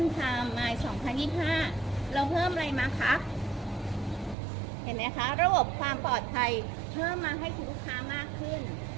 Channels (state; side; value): drops out; left; at 4.4 s